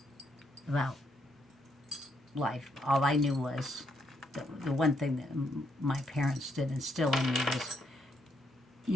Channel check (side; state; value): both; normal; correlation 0.75